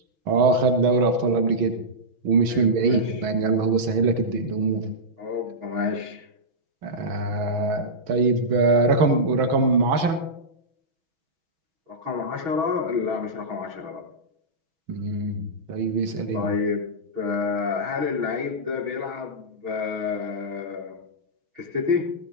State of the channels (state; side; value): late; left; 6.2 ms